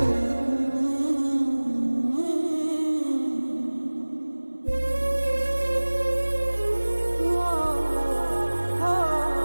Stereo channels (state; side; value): inverted; both; correlation -1.00